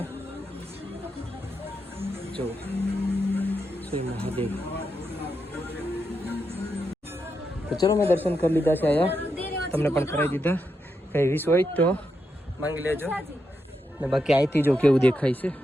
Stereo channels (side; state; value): both; normal; correlation 0.84